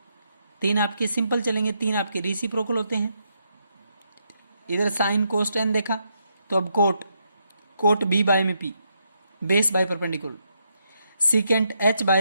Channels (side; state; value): both; inverted; correlation -0.78